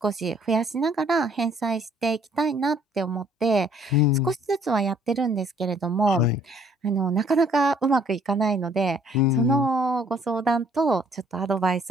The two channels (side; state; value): both; normal; correlation 0.61